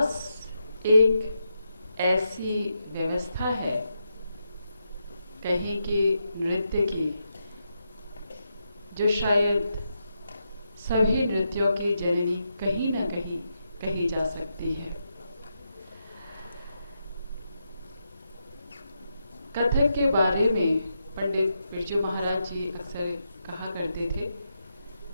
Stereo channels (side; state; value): both; inverted; correlation -0.84